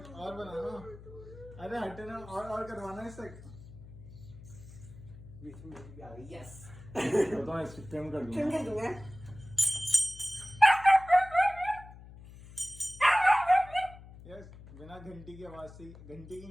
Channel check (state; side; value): noise; left; hum, 17 dB below the sound